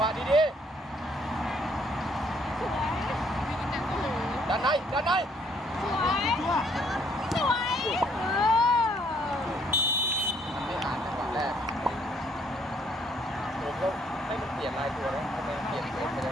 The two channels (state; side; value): normal; both; correlation 0.66